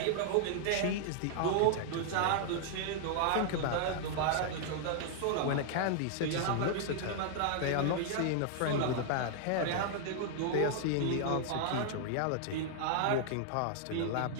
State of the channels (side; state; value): both; different; correlation -0.01